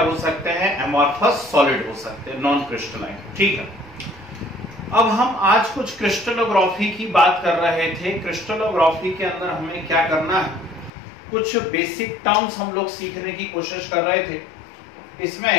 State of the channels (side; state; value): right; drops out; at 10.9 s